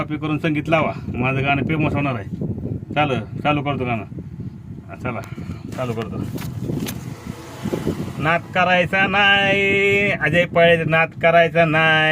करून संगीत लावा, माझं गाणं फेमस होणार आहे. चालू करतो गाणं. चला चालू करतो. नाद करायचा नाही अजय पाळे, नाद करायचा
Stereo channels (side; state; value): both; identical; correlation 1.00